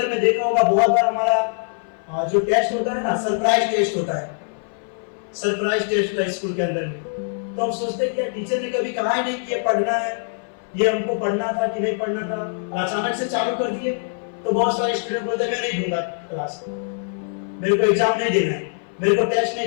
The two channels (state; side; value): silent; right; 58 dB below the other